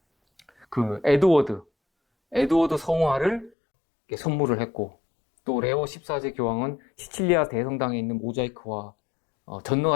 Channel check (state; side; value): drops out; right; at 3.5 s